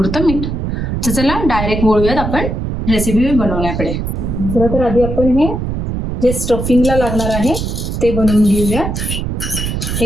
मीठ. तर चला डायरेक्ट वळूयात आपण रेसिपी बनवण्याकडे. तर आधी आपण हे जे स्टफिंगला लागणार आहे ते बनवून घेऊया.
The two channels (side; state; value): right; noise; rumble, 3 dB below the sound